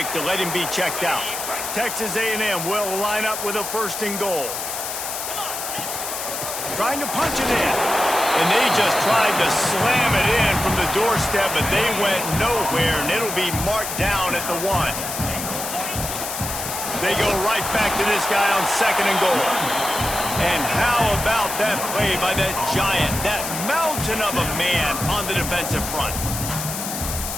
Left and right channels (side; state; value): left; noise; hiss, 5 dB below the sound